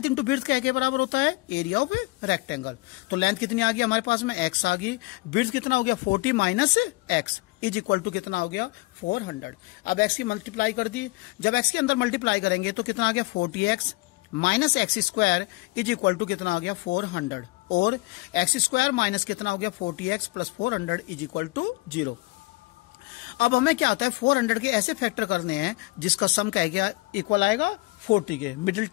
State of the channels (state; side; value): quieter; right; 23.1 dB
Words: into width क्या के बराबर होता है एरिया ऑफ रेक्टेंगल। तो लेंथ कितनी आ गई हमारे पास में x आ गई, विड्थ कितना हो गया 40 minus x is equal to कितना हो गया 400। अब x की मल्टीप्लाई कर दी, जब x के अंदर मल्टीप्लाई करेंगे तो कितना आ गया 40x minus x square is equal to कितना आ गया 400, और एक्स स्क्वायर माइनस कितना हो गया 40x plus 400 is equal to 0। अब हमें क्या आता है 400 के ऐसे फैक्टर करने हैं जिसका सम क्या गया इक्वल आएगा 40 के मिडिल